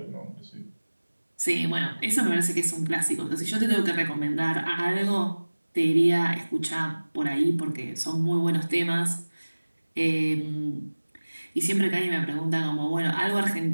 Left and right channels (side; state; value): both; inverted; correlation -1.00